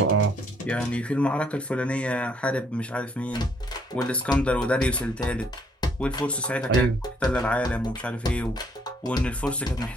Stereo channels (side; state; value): both; normal; correlation 0.67